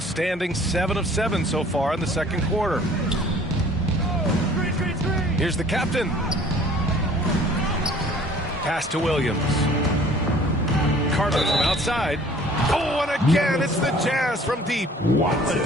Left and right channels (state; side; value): normal; both; correlation 0.52